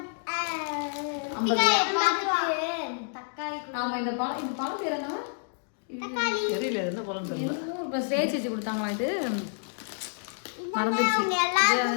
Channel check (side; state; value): right; silent; digital silence